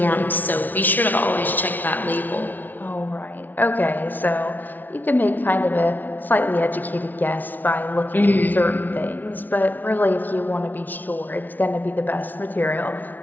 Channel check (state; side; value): late; right; 0.083 ms